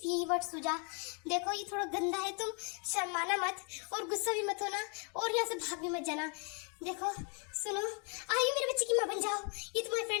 यही वर्ड सूझा। देखो ये थोड़ा गंदा है, तुम शर्माना मत और गुस्सा भी मत होना और यहाँ से भाग भी मत जाना। देखो सुनो, आयु मेरे बच्चे की माँ बन जाओ, ये तुम्हारे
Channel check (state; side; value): quieter; right; 37.8 dB